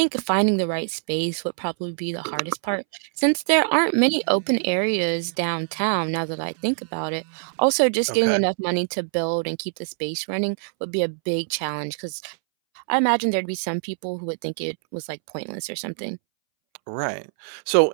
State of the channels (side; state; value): left; silent; 62 dB below the other